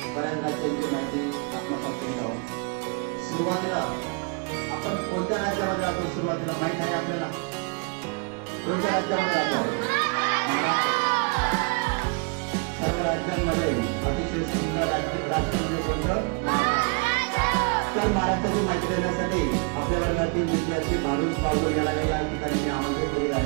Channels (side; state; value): left; quieter; 35.0 dB